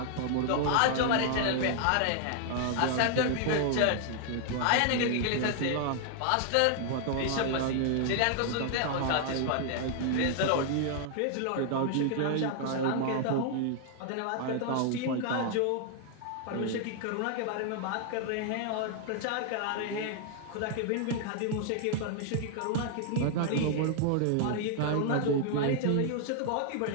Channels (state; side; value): different; both; correlation 0.00